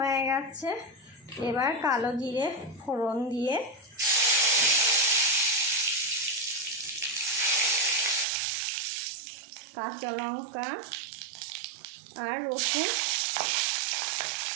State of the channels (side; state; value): left; drops out; at 8.2 s